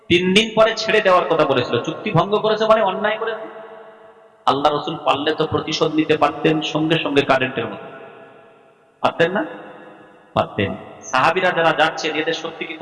3 দিন পরে ছেড়ে দেওয়ার কথা বলেছিল, চুক্তি ভঙ্গ করেছে মানে অন্যায় করেছে। আল্লাহ রসুল পারলে তো প্রতিশোধ নিতে পারতেন সঙ্গে সঙ্গে, কারেন্টের মতো, পারতেন না? পারতেন। সাহাবীরা যারা যাচ্ছেন এদের শক্তি কি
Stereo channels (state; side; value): identical; both; correlation 1.00